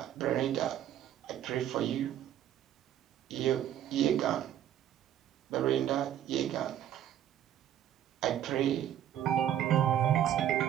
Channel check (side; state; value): left; quieter; 10.9 dB